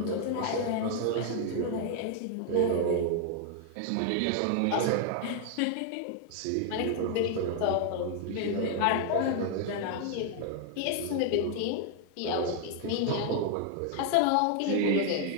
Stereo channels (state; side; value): different; both; correlation 0.00